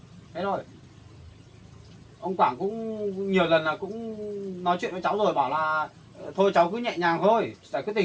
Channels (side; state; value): both; identical; correlation 1.00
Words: Thế thôi. Ông Quảng cũng nhiều lần là cũng nói chuyện với cháu rồi, bảo là thôi cháu cứ nhẹ nhàng thôi, giải quyết